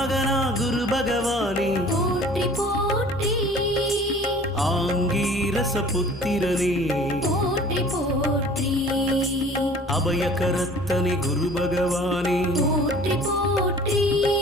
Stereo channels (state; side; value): normal; both; correlation 0.48